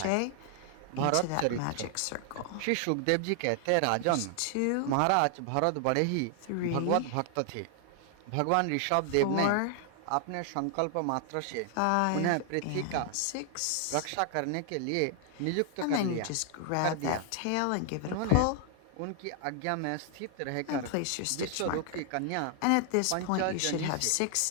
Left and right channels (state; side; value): different; both; correlation 0.00